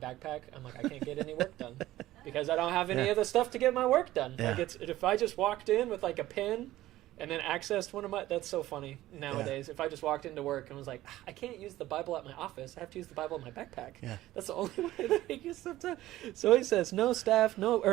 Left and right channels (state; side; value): quieter; left; 15.4 dB